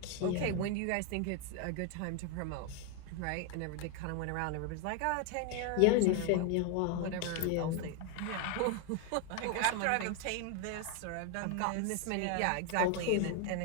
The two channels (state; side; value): different; both; correlation 0.01